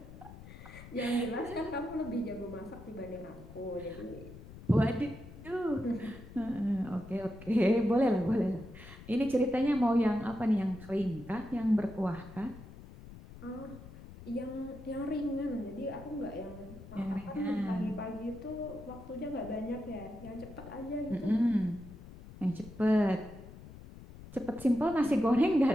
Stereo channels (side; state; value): left; noise; rumble, 16 dB below the sound